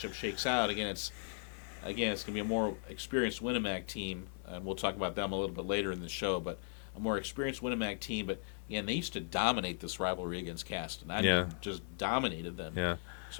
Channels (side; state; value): right; silent; digital silence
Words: shakes out. Again, it's going to be a more experienced Winnemac team, and we'll talk about them a little bit later in the show, but a more experienced Winnemac team. But, again, they used to dominate this rivalry against Caston. I mean, just dominated them. Yeah.